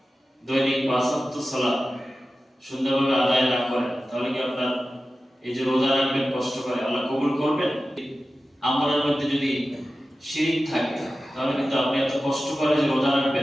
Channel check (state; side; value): normal; both; correlation 0.94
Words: দৈনিক 5 ওয়াক্ত সালাত সুন্দরভাবে আদায় না করেন, তাহলে কি আপনার এই যে রোজা রাখবেন কষ্ট করে, আল্লাহ কবুল করবেন? আমলের মধ্যে যদি শিরিক থাকে, তাহলে কিন্তু আপনি এত কষ্ট করে যে রোজা